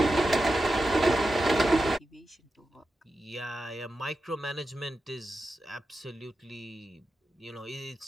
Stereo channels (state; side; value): normal; both; correlation 0.90